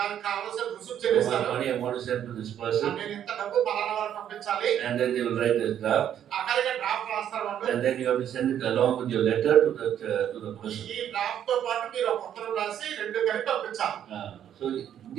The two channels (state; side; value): quieter; left; 10.0 dB